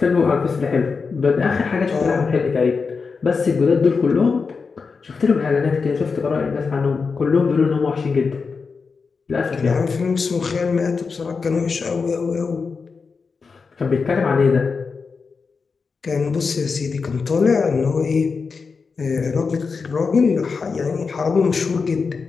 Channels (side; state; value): right; quieter; 5.0 dB